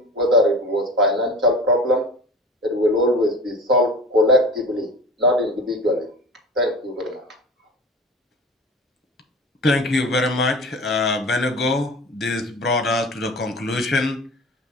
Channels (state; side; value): normal; both; correlation 0.36